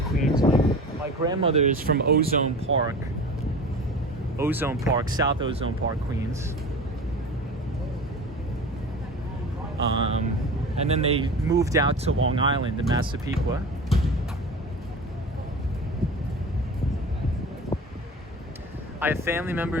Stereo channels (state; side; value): normal; both; correlation 0.35